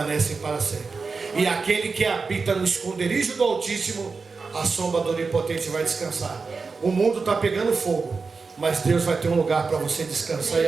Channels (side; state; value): left; quieter; 4.6 dB